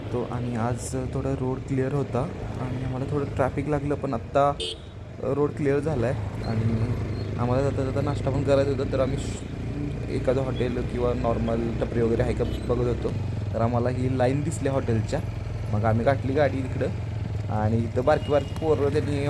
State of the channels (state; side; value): identical; both; correlation 1.00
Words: आणि आज थोडा रोड क्लिअर होता आणि आम्हाला थोडं ट्रॅफिक लागलं, पण आत्ता रोड क्लिअर झाला आहे आणि आम्हाला जाता जाता नाश्ता पण करायचा होता. तर आम्ही एखादं हॉटेल किंवा नॉर्मल टपरी वगैरे आहे का बघत होतो. तर आम्हाला ही लाईन दिसली हॉटेलच्या. मग आम्ही गाठली गाडी इकडं आणि इथं बारकी पोरं त्यांनी